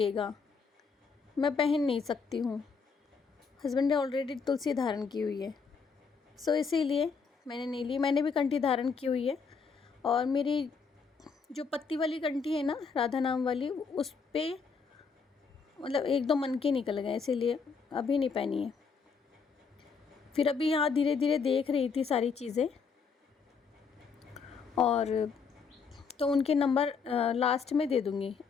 मैं पहन नहीं सकती हूँ। हस्बैंड ने ऑलरेडी तुलसी धारण की हुई है, सो इसीलिए मैंने नहीं ली। मैंने भी कंठी धारण की हुई है और मेरी जो पत्ती वाली कंठी है ना राधा नाम वाली, उस पर मतलब एक दो मन के निकल गए, इसीलिए अभी नहीं पहनी है। फिर अभी यहाँ धीरे धीरे देख रही थी सारी चीज़ें, और तो उनके नंबर लास्ट में दे दूँगी,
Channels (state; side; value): quieter; right; 5.4 dB